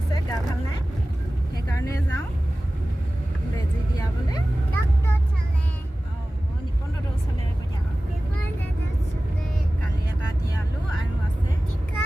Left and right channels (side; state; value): both; normal; correlation 0.96